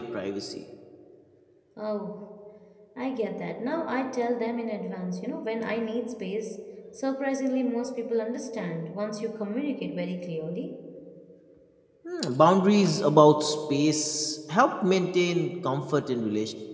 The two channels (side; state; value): both; identical; correlation 1.00